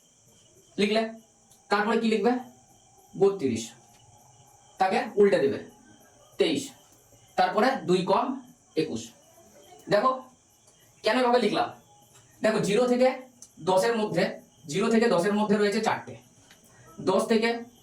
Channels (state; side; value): identical; both; correlation 1.00